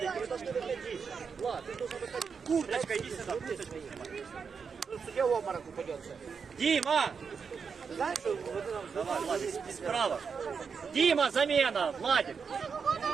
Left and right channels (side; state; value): left; quieter; 5.9 dB